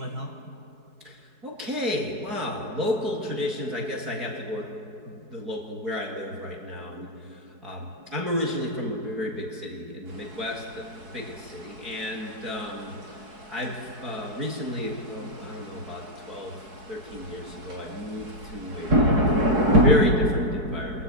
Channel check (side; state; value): left; late; 4.7 ms